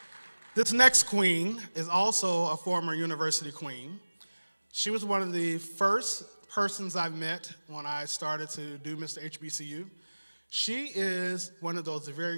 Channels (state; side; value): inverted; both; correlation -1.00